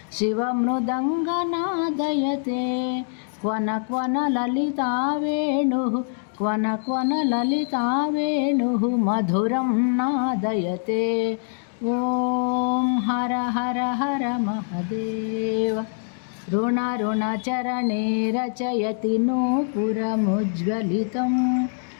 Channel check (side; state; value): right; silent; digital silence